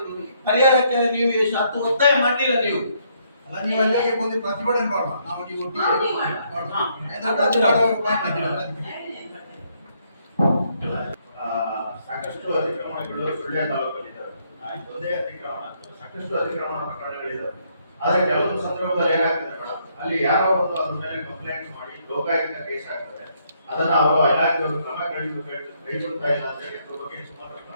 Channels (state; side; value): inverted; both; correlation -0.71